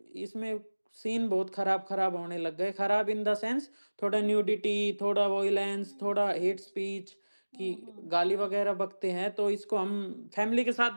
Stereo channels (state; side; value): inverted; both; correlation -1.00